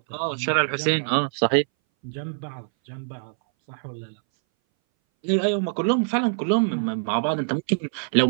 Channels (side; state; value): left; silent; 60 dB below the other